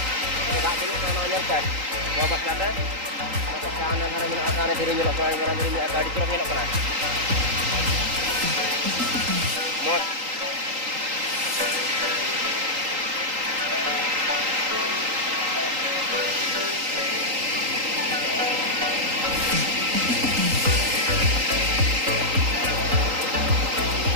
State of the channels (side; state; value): left; late; 3.8 ms